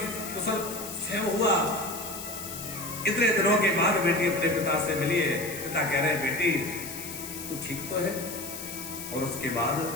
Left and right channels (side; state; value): left; noise; hiss, 9 dB below the sound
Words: कुशल क्षेम हुआ? इतने दिनों के बाद बेटी अपने पिता से मिली है। पिता कह रहे हैं बेटी तू ठीक तो है? और उसके बाद